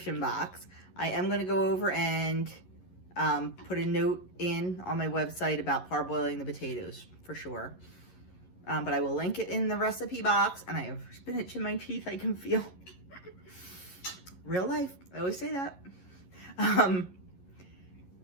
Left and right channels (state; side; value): late; right; 11 ms